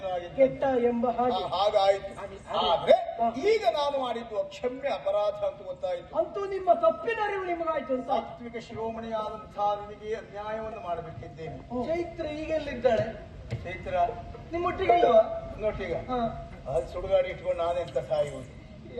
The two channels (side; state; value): both; identical; correlation 1.00